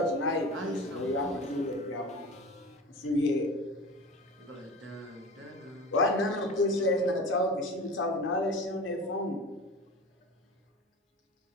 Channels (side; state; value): both; normal; correlation 0.34